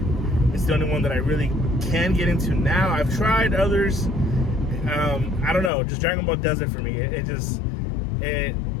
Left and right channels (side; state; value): right; drops out; at 5.7 s